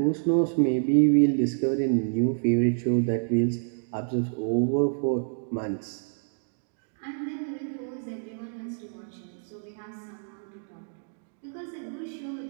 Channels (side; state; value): left; silent; digital silence